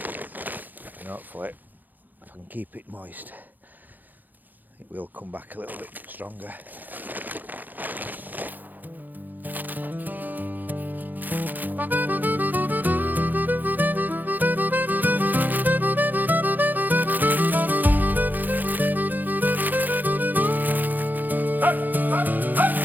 and hopefully if I can keep it moist it will come back a little bit stronger.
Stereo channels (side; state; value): left; late; 0.085 ms